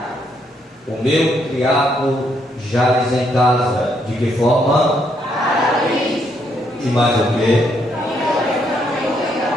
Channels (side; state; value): both; normal; correlation 0.74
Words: O meu criado jaz em casa. De que forma? E mais o que?